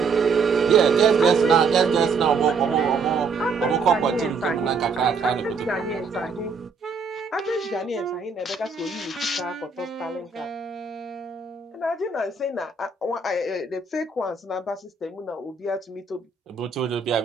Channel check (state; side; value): quieter; left; 4.7 dB